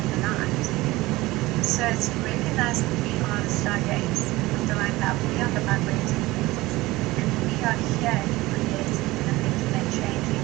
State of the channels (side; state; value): left; quieter; 19.5 dB